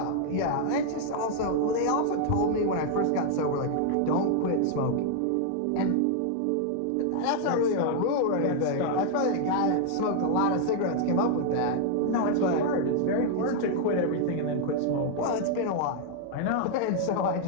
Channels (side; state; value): both; different; correlation 0.00